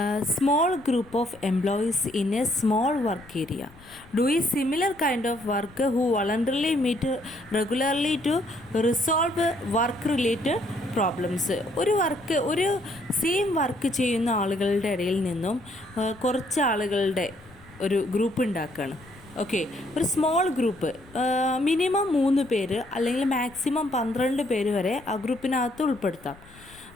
small group of employees in a small work area doing similar kind of work who voluntarily meet regularly to resolve work related problems. ഒരു same work ചെയ്യുന്ന ആളുകളുടെ ഇടയിൽ നിന്നും കുറച്ച് ആളുകളുടെ ഒരു ഗ്രൂപ്പ് ഉണ്ടാക്കുകയാണ്. ഓക്കെ, ഒരു സ്മോൾ ഗ്രൂപ്പ്, മിനിമം 3 പേര് അല്ലെങ്കിൽ മാക്സിമം 12 പേര് വരെ ആ ഗ്രൂപ്പിനകത്ത് ഉൾപ്പെടുത്താം.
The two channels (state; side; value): noise; left; rumble, 23 dB below the sound